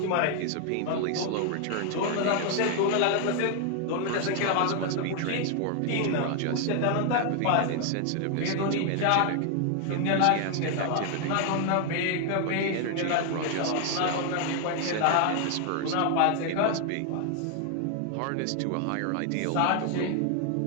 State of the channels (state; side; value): different; both; correlation 0.00